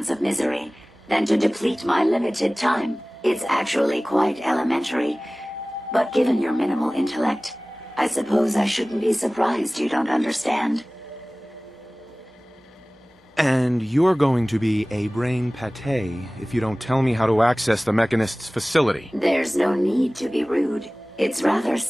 of misery than to deplete my limited time. It's actually quite elementary, but given your minimal intellect, I suppose I shouldn't be surprised you don't understand. And you're going to be a brain pate if you don't tell me how to access the Mechanist's facility. There's no need to be rude. It's rather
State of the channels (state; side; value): normal; both; correlation 0.98